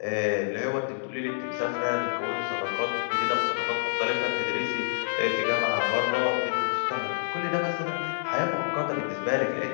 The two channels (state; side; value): silent; right; digital silence